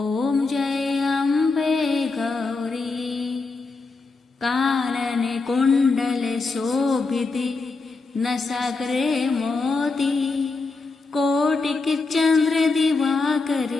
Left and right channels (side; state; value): right; quieter; 3.9 dB